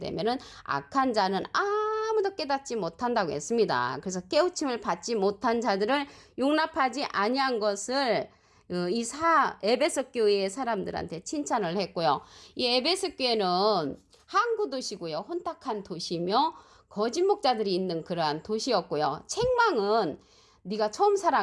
악한 자는 아무도 깨닫지 못한다고 했습니다. 그래서 깨우침을 받지 못한 자들을 용납하지 아니한 것을 에베소 교회의 사람들한테 칭찬을 했고요. 이 에베소 교회는 항구 도시고요. 혼탁한 도시며 거짓 목자들이 있는 그러한 도시였고요. 책망은 네가 처음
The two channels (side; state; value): both; identical; correlation 1.00